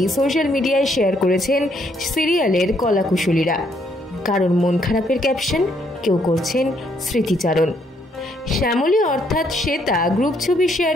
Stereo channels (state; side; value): normal; both; correlation 0.71